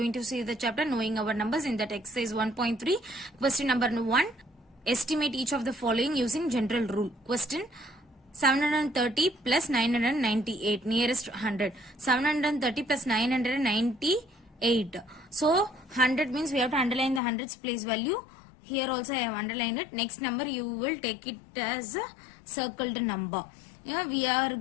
to see the chapter Knowing Our Numbers in that exercise 1.3. Question number 1. Estimate each of the following using general rule. Question 730 plus 998 nearest 100. 730 plus 998. So 100 means we have to underline the hundreds place value. Here also I have underlined it. Next number you will take it as a circled number. We are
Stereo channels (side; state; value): right; drops out; at 17.2 s